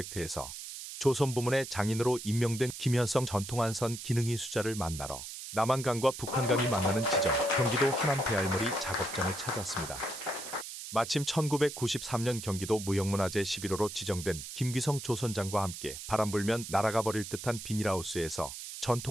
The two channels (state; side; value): noise; right; hiss, 9 dB below the sound